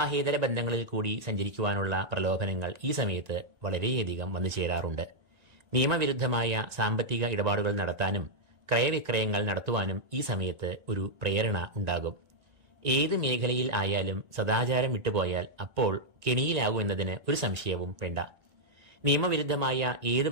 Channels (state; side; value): late; left; 1.8 ms